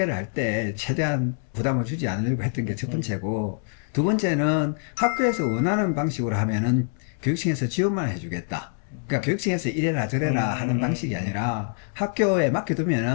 할 때 최대한 부담을 주지 않으려고 했던 게 첫 번째고, 두 번째는 학교에서 원하는 방식으로 하면은 교육청에서 지원만 해주겠다. 그러니까 교육청에서 이래라 저래라 하는 방식이 아니라 학교에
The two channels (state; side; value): silent; right; digital silence